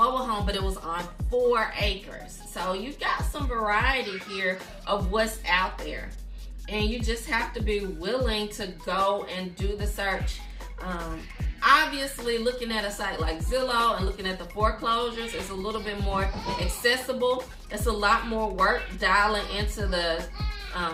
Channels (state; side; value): identical; both; correlation 1.00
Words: home, but it was on 4 acres. So you got some variety here of what's out there. And you just have to be willing to go and do the search. Obviously, looking at a site like Zillow and looking at the foreclosures is a little bit more accessible. It's a lot more work dialing into the